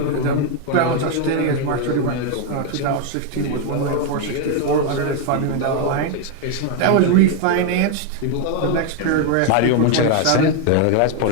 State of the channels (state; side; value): different; both; correlation 0.01